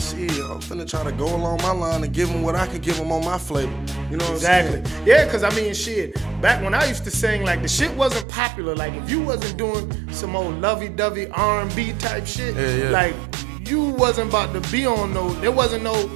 like, shit, I'm finna try to go along my line and give them what I can give them on my flavor. You know what I'm saying? Yeah, because I mean, shit, back when I used to sing, like the shit wasn't popular. Like if you wasn't doing some old lovey-dovey R&B type shit, like you wasn't about to be on there wasn't no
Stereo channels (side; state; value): left; drops out; at 8.2 s